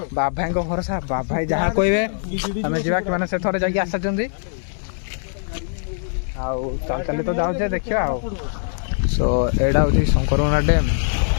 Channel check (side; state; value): right; silent; digital silence